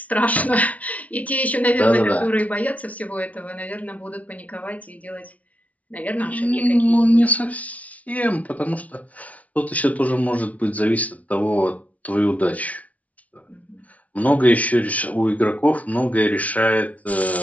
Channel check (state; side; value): late; right; 0.069 ms